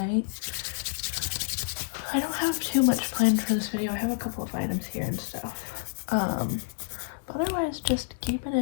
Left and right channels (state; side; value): silent; right; digital silence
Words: I don't have too much planned for this video. I have a couple of items here and stuff. But otherwise, just keeping